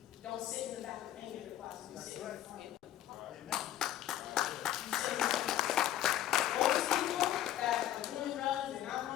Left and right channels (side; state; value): right; quieter; 12.5 dB